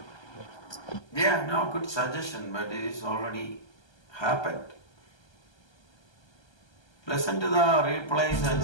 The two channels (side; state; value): right; late; 1.3 ms